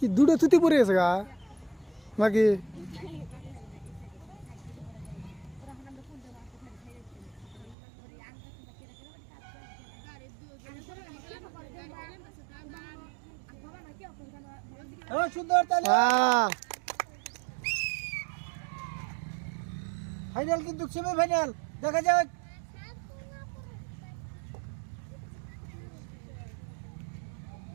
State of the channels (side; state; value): left; drops out; at 7.8 s